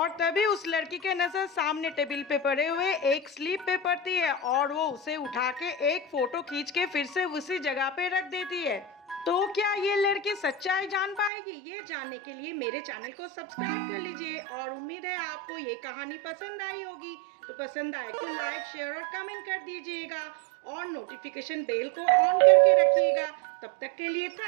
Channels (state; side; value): drops out; left; at 11.3 s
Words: तभी उस लड़की के नजर सामने टेबल पे पड़े हुए एक स्लिप पे पड़ती है और वो उसे उठा के एक फोटो खींच के फिर से उसी जगह पे रख देती है। तो क्या ये लड़की सच्चाई जान पाएगी? ये जानने के लिए मेरे चैनल को सब्सक्राइब कर लीजिए और उम्मीद है आपको ये कहानी पसंद आई होगी। तो पसंद आए तो लाइक शेयर और कमेंट कर दीजिएगा और नोटिफिकेशन बेल को ऑन करके रखिएगा। तब तक के लिए